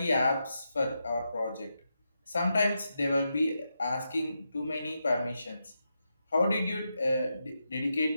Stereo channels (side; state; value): both; inverted; correlation -0.86